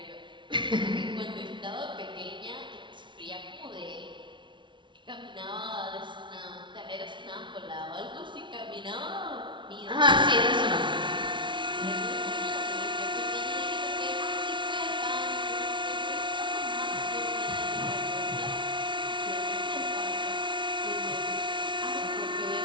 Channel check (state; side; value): late; left; 0.24 ms